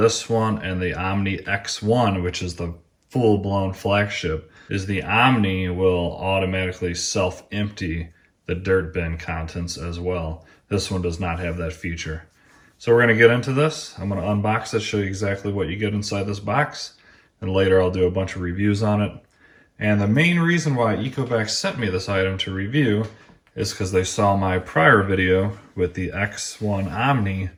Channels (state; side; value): identical; both; correlation 1.00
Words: one and the Omni X1, which is the full-blown flagship, is the Omni will automatically self-empty the dirt bin contents as well. This one does not have that feature. So we're going to get into this. I'm going to unbox it, show you exactly what you get inside this box. And later I'll do a bunch of reviews on it. And the main reason why Ecovacs sent me this item to review is because they saw my prior video with the X1 Omni